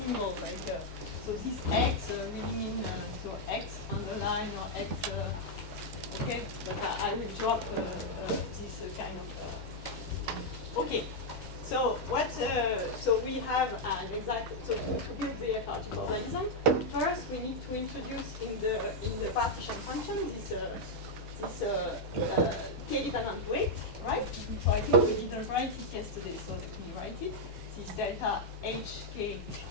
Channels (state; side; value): normal; both; correlation -0.02